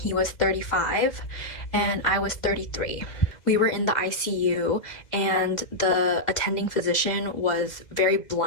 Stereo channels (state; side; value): late; right; 2.0 ms